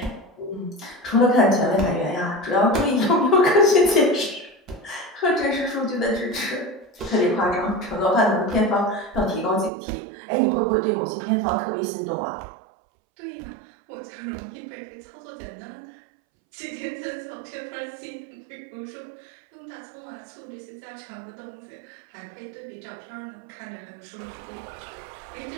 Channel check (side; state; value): left; drops out; at 9.7 s